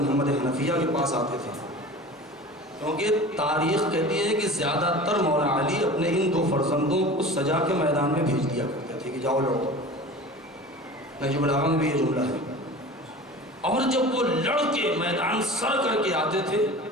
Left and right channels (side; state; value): both; normal; correlation 0.37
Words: حنفیہ کے پاس آتے تھے، کیونکہ تاریخ کہتی ہے کہ زیادہ تر مولا علی اپنے ان دو فرزندوں کو سجا کے میدان میں بھیج دیا کرتے تھے کہ جاؤ لڑو۔ نہج البلاغہ میں بھی یہ جملہ ہے۔ اور جب وہ لڑ کے میدان سر کر کے آتے تھے